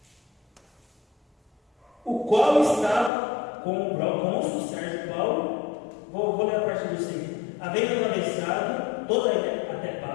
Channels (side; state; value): right; drops out; at 3.1 s